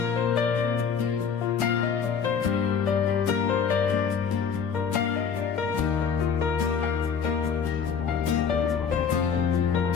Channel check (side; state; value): right; quieter; 6.7 dB